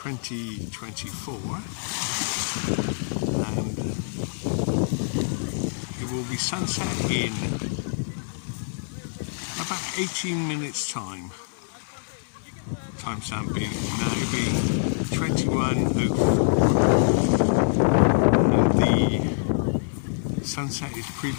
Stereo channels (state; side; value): silent; right; digital silence